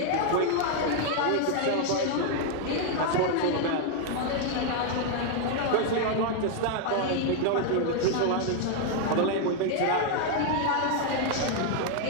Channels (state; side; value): different; both; correlation 0.00